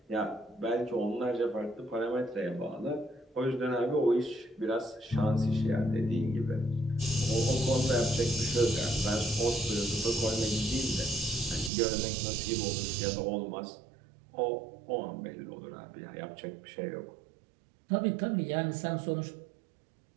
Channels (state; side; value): drops out; left; at 11.7 s